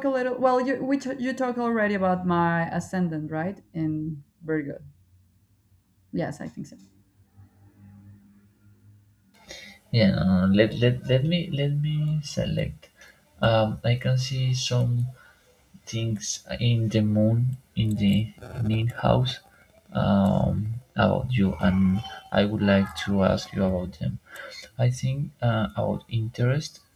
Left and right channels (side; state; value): both; identical; correlation 1.00